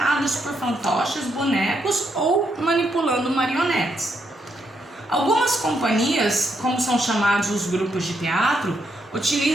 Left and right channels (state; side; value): normal; both; correlation 0.78